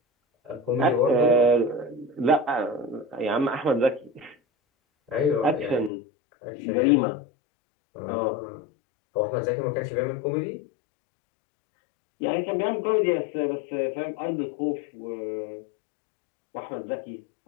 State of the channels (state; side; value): drops out; right; at 5.9 s